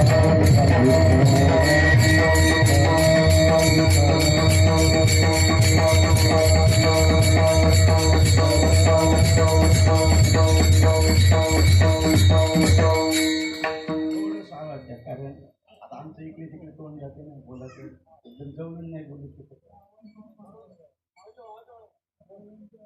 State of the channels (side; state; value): both; identical; correlation 1.00